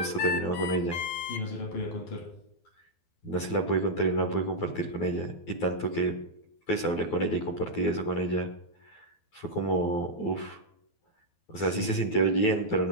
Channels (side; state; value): right; late; 12 ms